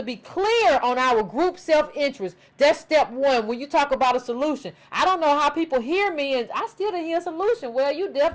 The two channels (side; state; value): both; identical; correlation 1.00